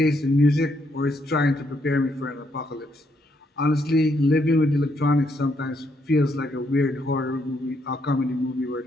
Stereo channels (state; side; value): normal; both; correlation 0.75